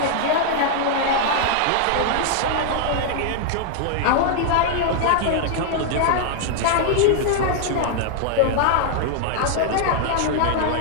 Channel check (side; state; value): both; different; correlation 0.00